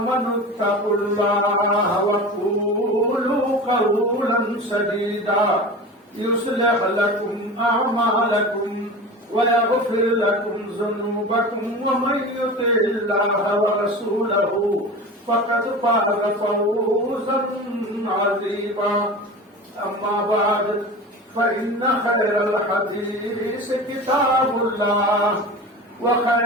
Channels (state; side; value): normal; both; correlation 0.32